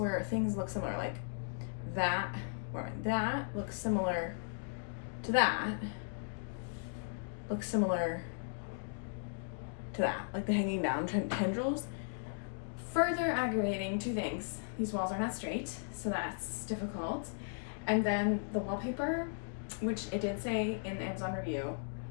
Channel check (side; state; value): right; silent; digital silence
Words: things look similar, like that, that looks similar to that, looks similar to that, like the hanging down tendrils. Further aggravating two things: these walls are not straight, so that's difficult, and then the wallpaper, which it did say in the Amazon review,